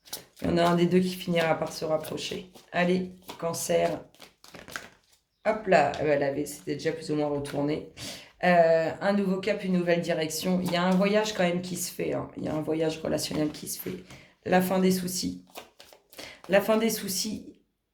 Il y en a un des deux qui finira par se rapprocher. Allez, Cancer. Hop là, c'était déjà plus ou moins retourné. Un nouveau cap, une nouvelle direction. Il y a un voyage quand même qui se fait. Il y a un voyage relationnel qui se fait. La fin des soucis. La fin des soucis.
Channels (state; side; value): identical; both; correlation 1.00